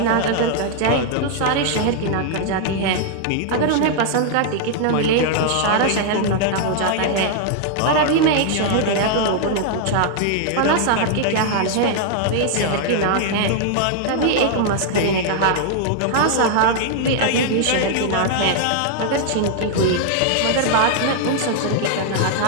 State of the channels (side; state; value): both; different; correlation 0.00